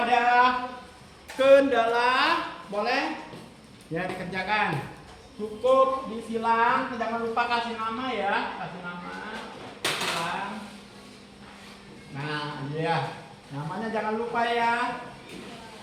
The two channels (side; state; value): both; identical; correlation 1.00